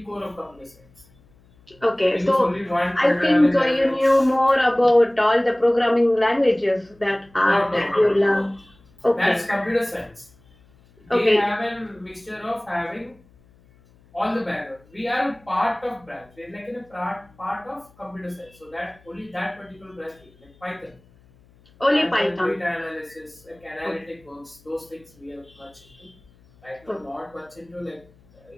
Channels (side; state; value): left; noise; hum, 29 dB below the sound